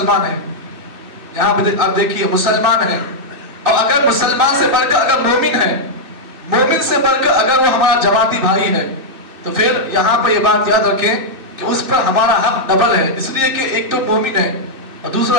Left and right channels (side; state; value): left; late; 2.6 ms